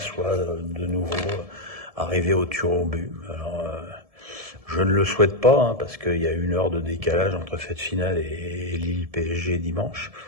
de nouveau arriver au tir au but. Alors, Je ne le souhaite pas, hein, parce qu'il y a 1 heure de décalage entre cette finale et Lille PSG dimanche.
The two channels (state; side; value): late; left; 1.7 ms